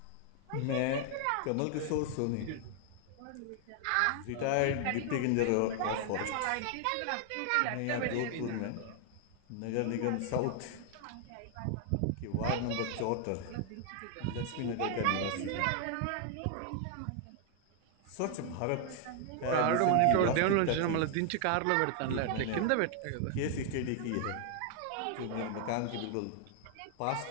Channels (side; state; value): both; different; correlation 0.00